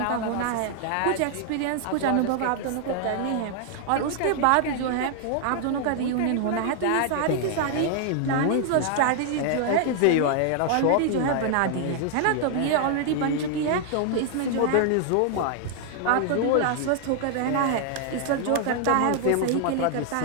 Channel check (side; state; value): both; different; correlation 0.00